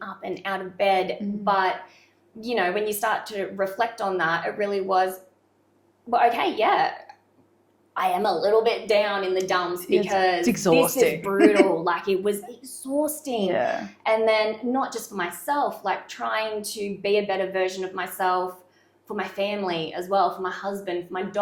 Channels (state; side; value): identical; both; correlation 1.00